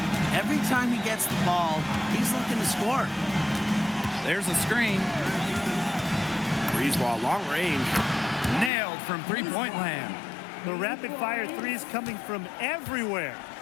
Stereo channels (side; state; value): right; drops out; at 8.7 s